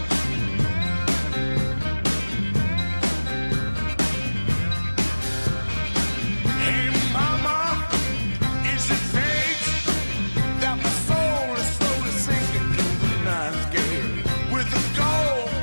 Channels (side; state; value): both; inverted; correlation -1.00